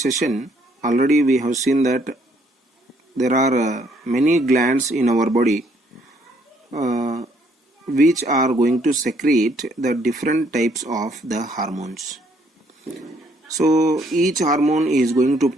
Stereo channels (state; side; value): normal; both; correlation 0.67